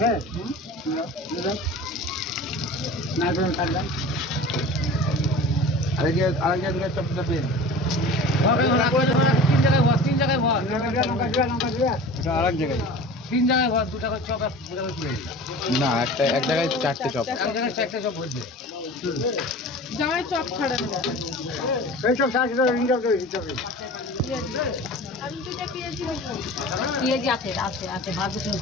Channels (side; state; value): both; normal; correlation 0.38